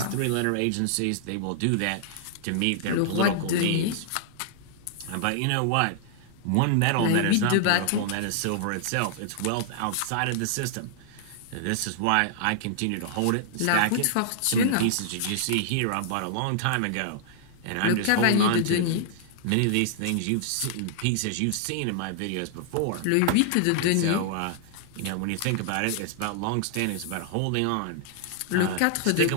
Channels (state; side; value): different; both; correlation -0.01